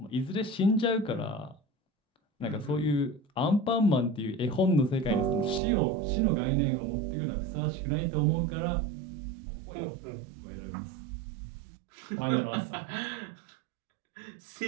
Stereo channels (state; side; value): drops out; left; at 5.6 s